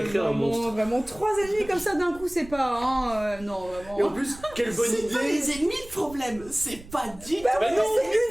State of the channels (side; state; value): right; noise; rumble, 19 dB below the sound